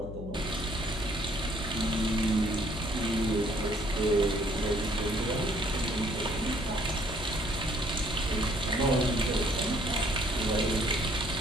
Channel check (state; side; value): noise; left; hum, 10 dB below the sound